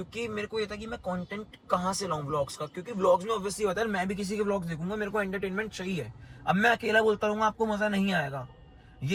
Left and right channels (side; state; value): both; identical; correlation 1.00